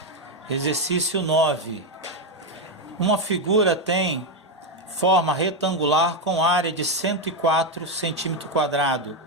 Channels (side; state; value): both; normal; correlation 0.06